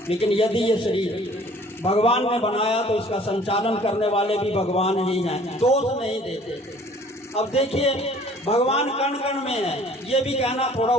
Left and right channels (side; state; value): both; normal; correlation 0.53